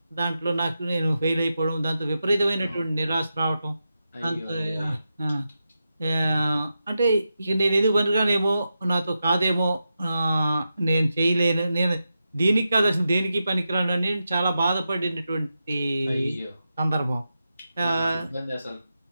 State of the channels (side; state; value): both; inverted; correlation -0.89